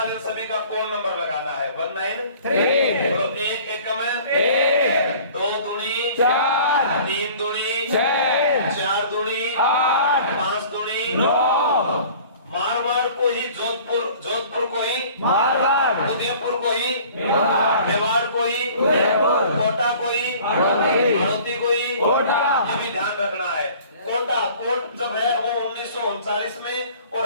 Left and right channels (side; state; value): both; inverted; correlation -0.48